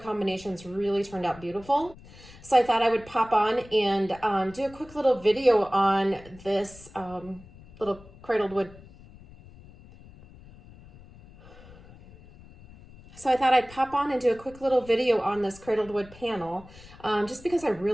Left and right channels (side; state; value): left; noise; rumble, 21 dB below the sound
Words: really turned out beautiful. So I thought I would pop on and do a quick little video on this little cradled wood. So I thought I'd pop on and do a quick little video on this cradled wood panel, just because I